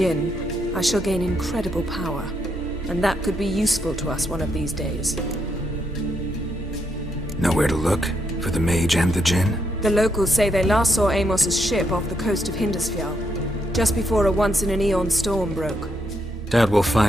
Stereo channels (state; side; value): normal; both; correlation 0.78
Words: I shall gain incredible power. And that could be useful to us one of these days. Know where to look? For the mage and the djinn? The locals say they last saw Amos's ship off the coast of Hindisfjall, just before a once-in-an-eon storm broke. Doubt we'll